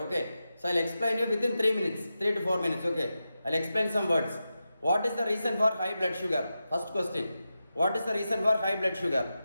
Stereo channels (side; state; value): both; inverted; correlation -0.90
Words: Okay. So I'll explain you within 3 minutes, 3 to 4 minutes. Okay. I'll explain some words. What is the reason for high blood sugar? First question. What is the reason for high blood sugar?